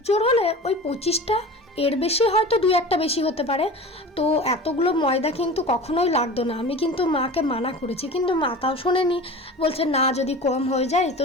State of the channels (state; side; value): normal; both; correlation 0.35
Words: জোর হলে ওই 25টা, এর বেশি হয়তো 2-1টা বেশি হতে পারে। তো এতগুলো ময়দা কিন্তু কখনোই লাগতো না। আমি কিন্তু মাকে মানা করেছি, কিন্তু মা তাও শোনেনি, বলছে না যদি কম হয়ে যায়। তো